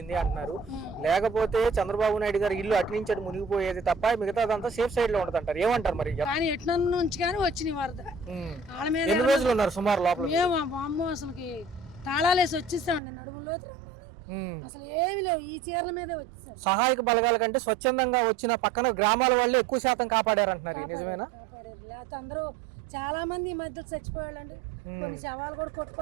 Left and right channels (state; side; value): drops out; left; at 13.0 s